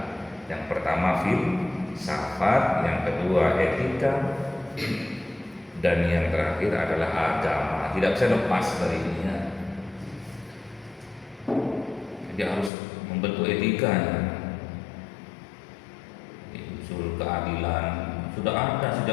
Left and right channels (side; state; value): right; drops out; at 12.7 s